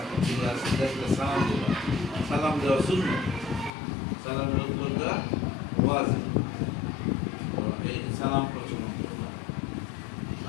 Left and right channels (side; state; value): right; drops out; at 3.7 s